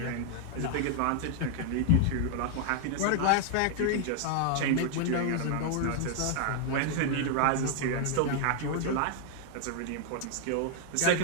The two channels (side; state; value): both; different; correlation 0.00